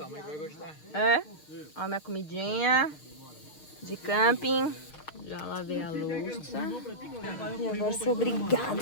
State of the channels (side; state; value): right; late; 6.5 ms